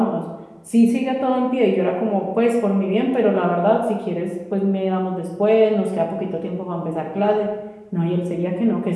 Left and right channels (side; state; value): both; identical; correlation 1.00